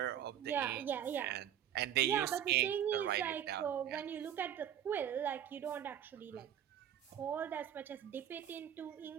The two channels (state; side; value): quieter; left; 10.1 dB